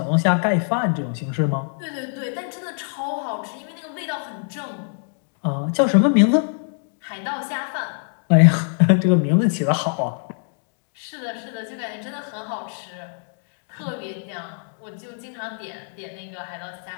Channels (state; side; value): silent; right; 63 dB below the other